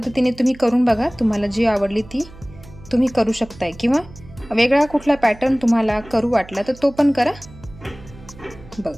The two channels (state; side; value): noise; right; hum, 20 dB below the sound